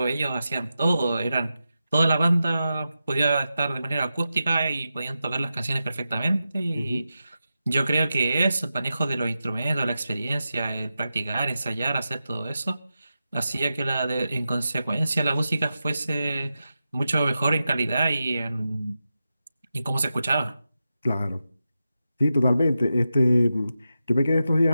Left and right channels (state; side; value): inverted; both; correlation -0.90